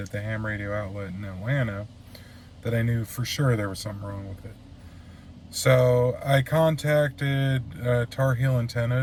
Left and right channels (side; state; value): both; identical; correlation 1.00